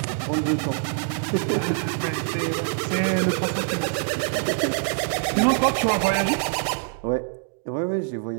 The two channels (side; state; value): left; silent; digital silence